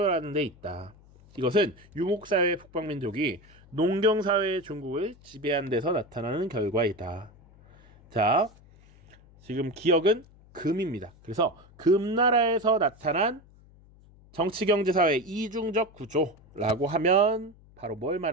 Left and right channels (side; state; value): left; noise; hum, 26 dB below the sound